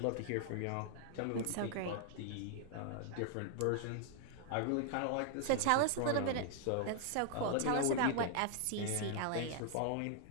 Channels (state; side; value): different; both; correlation 0.00